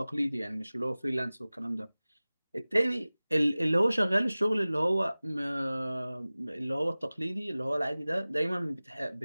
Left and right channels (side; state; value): both; inverted; correlation -0.98